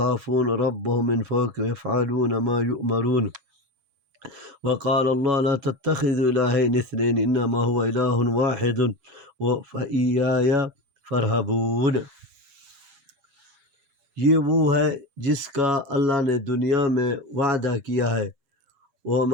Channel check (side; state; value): left; late; 7.2 ms